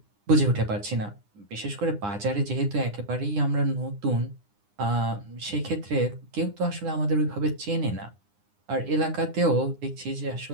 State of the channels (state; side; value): late; left; 9.8 ms